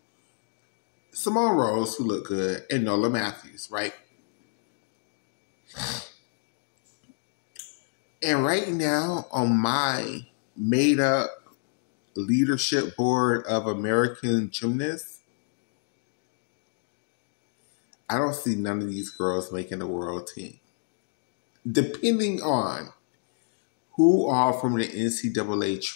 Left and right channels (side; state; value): right; silent; 59 dB below the other